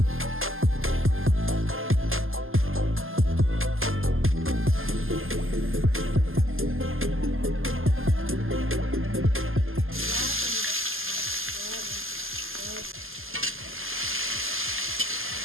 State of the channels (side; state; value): left; late; 0.60 ms